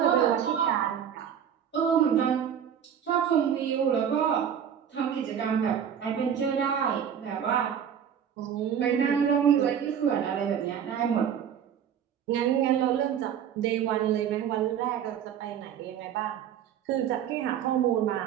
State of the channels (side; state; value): left; quieter; 8.7 dB